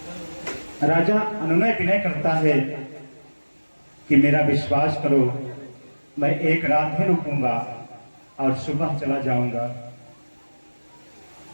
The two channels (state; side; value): inverted; both; correlation -1.00